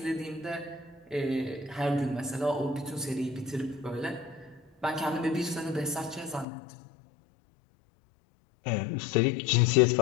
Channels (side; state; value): right; drops out; at 6.5 s